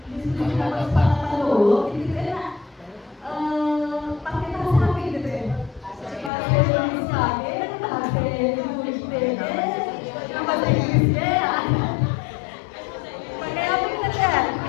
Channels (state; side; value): drops out; right; at 6.3 s